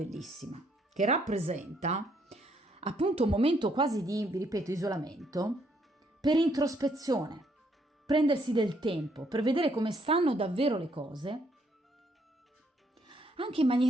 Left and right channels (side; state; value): both; normal; correlation 0.70